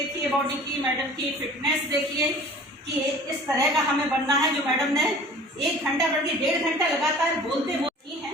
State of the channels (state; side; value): normal; both; correlation 0.45